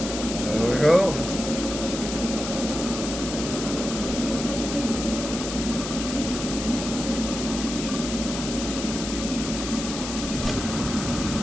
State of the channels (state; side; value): noise; left; hiss, 6 dB below the sound